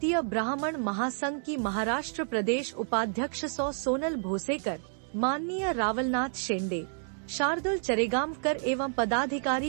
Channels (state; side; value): silent; left; 58 dB below the other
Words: ब्राह्मण महासंघ की महाराष्ट्र प्रदेश उपाध्यक्ष सोनल भोसेकर, माननीय रावलनाथ शेंडे, शार्दुल चरेगांवकर एवं